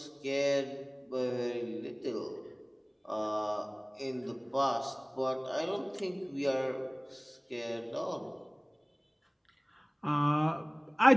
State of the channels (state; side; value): identical; both; correlation 1.00